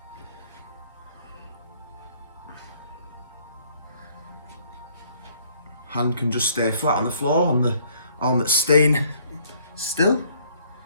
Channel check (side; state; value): both; inverted; correlation -0.62